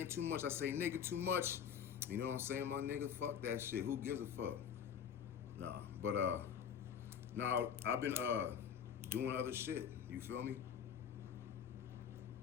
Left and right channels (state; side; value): quieter; right; 8.1 dB